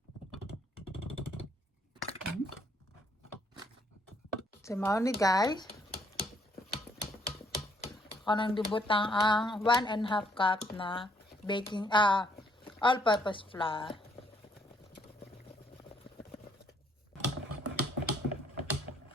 So mao ni guys. Kanang dibutang ang 1.5 cup na baking all-purpose flour.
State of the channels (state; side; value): normal; both; correlation 0.68